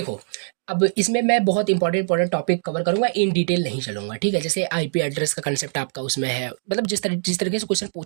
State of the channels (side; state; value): left; silent; digital silence